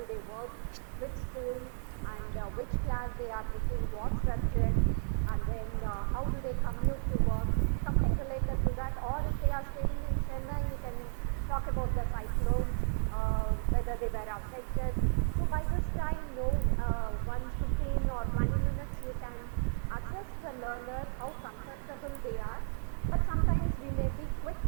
they work, which school and which class they are taking, what subject, and then how do they commute to work, something related to that. Or if they are staying in Chennai, you can talk about the cyclone, whether they were affected. So by this time, 15 or 20 minutes, you can assess the learner, how comfortable they are. But sometimes we may be quick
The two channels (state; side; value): silent; left; digital silence